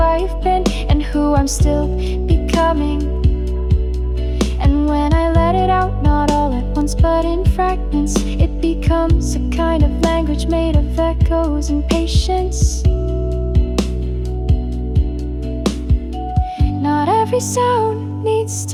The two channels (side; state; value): both; identical; correlation 1.00